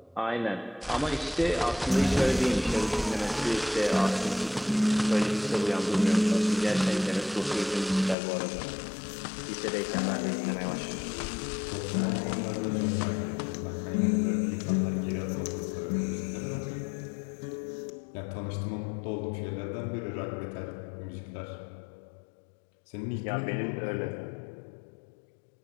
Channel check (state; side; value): drops out; right; at 8.2 s